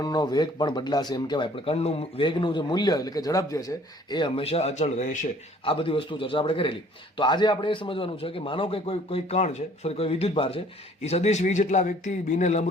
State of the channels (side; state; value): both; normal; correlation 0.56